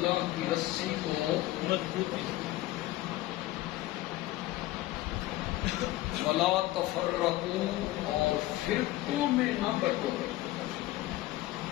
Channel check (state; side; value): quieter; right; 16.6 dB